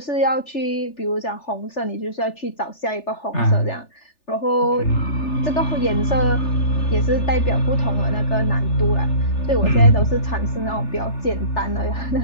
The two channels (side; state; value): right; late; 3.4 ms